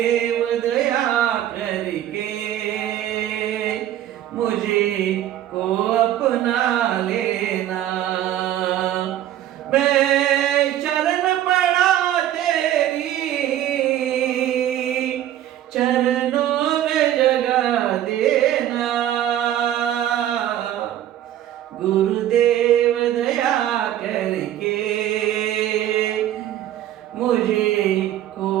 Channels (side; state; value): left; quieter; 12.1 dB